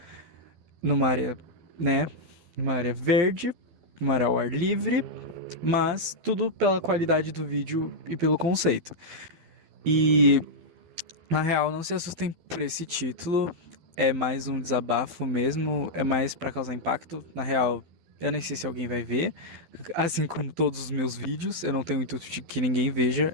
numa área, né? Numa área verde, numa área ao ar livre, mas tudo pela qualidade do vídeo e pelo conceito. E na real, não se assustem por esse título. É mais um desabafo mesmo, é mais pra causar impacto. Na real, eu nem sei se alguém vai ver. Assim como todos os meus vídeos, eu não tenho o intuito de que ninguém veja,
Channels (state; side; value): late; left; 12 ms